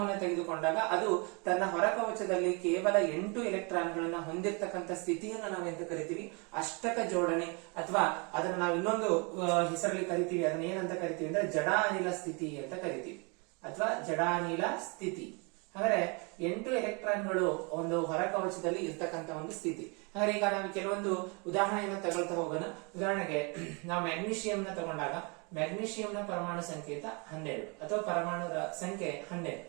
ತೆಗೆದುಕೊಂಡಾಗ ಅದು ತನ್ನ ಹೊರಕವಚದಲ್ಲಿ ಕೇವಲ 8 ಎಲೆಕ್ಟ್ರಾನ್ಗಳನ್ನ ಹೊಂದಿರತಕ್ಕಂಥ ಸ್ಥಿತಿಯನ್ನ ನಾವೆಂತ ಕರಿತೀವಿ, ಅಷ್ಟಕ ಜೋಡಣೆ, ಅಥವಾ ಅದನ್ನ ನಾವು ಇನ್ನೊಂದು ಹೆಸರಲ್ಲಿ ಕರಿತೀವಿ. ಅದನ್ನ ಏನಂತ ಕರಿತೀವಿ ಅಂದ್ರೆ ಜಡಾನಿಲ ಸ್ಥಿತಿ ಅಂತ ಕರಿತೀವಿ, ಅಥವಾ ಜಡಾನಿಲ ಸ್ಥಿತಿ. ಹಾಗಾದ್ರೆ 8 ಎಲೆಕ್ಟ್ರಾನ್ಗಳು ಒಂದು ಹೊರಕವಚದಲ್ಲಿ ಇರ್ತಕ್ಕಂಥ ಒಂದು ಸ್ಥಿತಿ. ಹಾಗಾದ್ರೆ ಈಗ ನಾವು ಕೆಲವೊಂದು ಉದಾಹರಣೆಯನ್ನ ತಗೊಳ್ತಾ ಹೋಗೋಣ. ಉದಾಹರಣೆಗೆ ನಾವು ಮ್ಯಾಗ್ನೀಷಿಯಂನ ತಗೊಂಡಾಗ ಮ್ಯಾಗ್ನೀಷಿಯಂನ ಪರಮಾಣು ಸಂಕೇತ 12 ಅಥವಾ ಪರಮಾಣು ಸಂಖ್ಯೆ 12.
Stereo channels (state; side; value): quieter; left; 31.9 dB